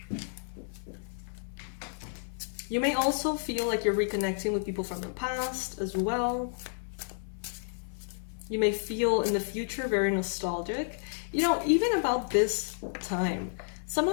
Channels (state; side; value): silent; right; 57 dB below the other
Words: You may also feel like you're reconnecting with people from the past as well. You may feel in the future very nostalgic. You know, even about this time, some